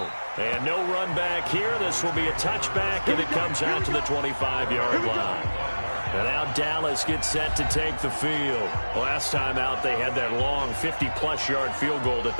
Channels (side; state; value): both; inverted; correlation -1.00